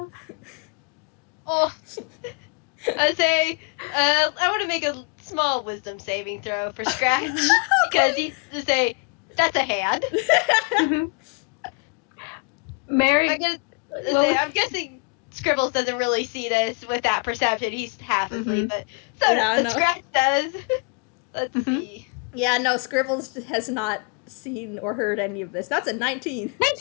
Oh. I say, I want to make a small wisdom saving throw for Scratch. Because he's to say, that's a hand. I'm guessing Scribbles doesn't really see this with that perception. He's half asleep, but Scratch does. Let's see. Yeah, no, Scribbles has not seen or heard any of this. That's a 19.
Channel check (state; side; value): quieter; right; 34.8 dB